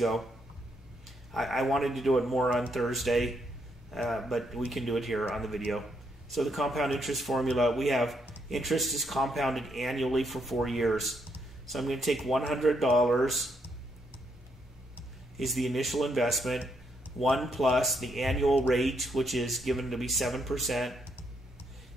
I wanted to do it more on Thursday, but we can do it here on the video. So the compound interest formula, we have interest is compounded annually for 4 years. So I'm going to take $100 is the initial investment, 1 plus the annual rate, which is given to be 7%, and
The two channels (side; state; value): both; normal; correlation 0.76